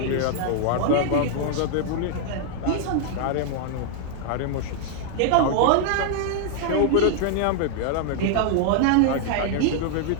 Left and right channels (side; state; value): both; different; correlation 0.00